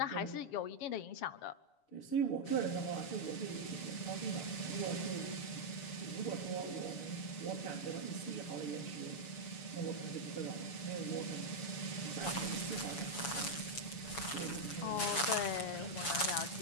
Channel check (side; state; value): right; late; 7.0 ms